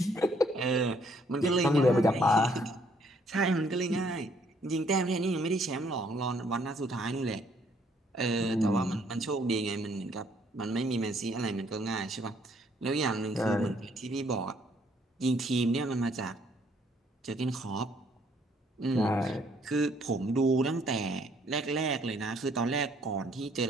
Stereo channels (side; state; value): both; normal; correlation 0.66